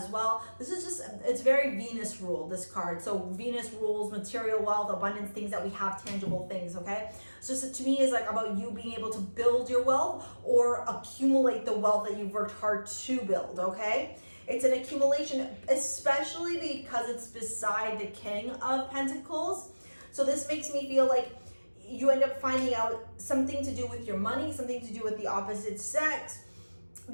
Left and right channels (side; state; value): both; inverted; correlation -1.00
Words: well. This is just, it's very Venus ruled, this card. So Venus rules material wealth, abundance, things that we have, tangible things, okay? So to me, it's like about you being able to build your wealth or accumulate the wealth that you've worked hard to build, okay? It's an accumulation, especially because it's beside the King of Pentacles. So this makes me feel like you end up finding out something to do with your money, something to do with the opposite sex,